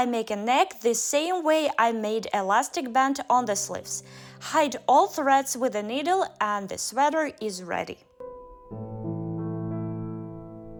make a neck the same way I made elastic band on the sleeves. Hide all threads with a needle and the sweater is ready.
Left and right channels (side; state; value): both; identical; correlation 1.00